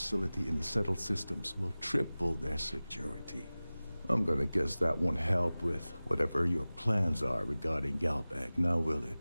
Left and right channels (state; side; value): inverted; both; correlation -0.98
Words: in the settled systems will triple their security. I'm gonna guess that won't help with whatever your plans are regarding Galbank, now will